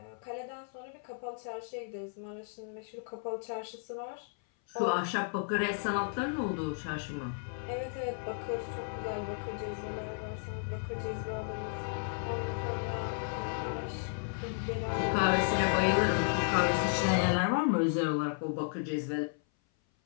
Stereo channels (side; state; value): right; silent; 55 dB below the other